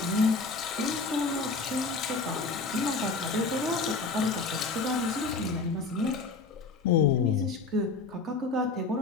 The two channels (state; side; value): quieter; right; 4.0 dB